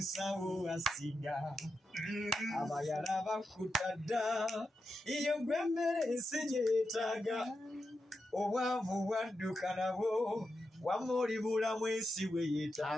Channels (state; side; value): normal; both; correlation 0.88